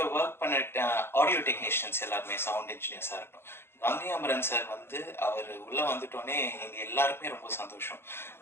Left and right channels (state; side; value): late; right; 0.11 ms